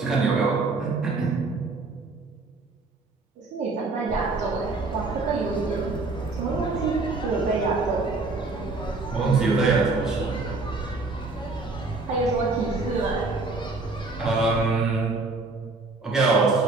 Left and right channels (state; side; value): quieter; left; 3.6 dB